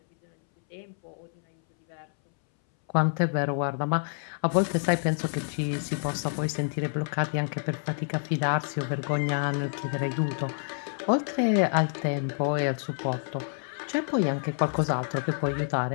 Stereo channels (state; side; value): silent; right; 59 dB below the other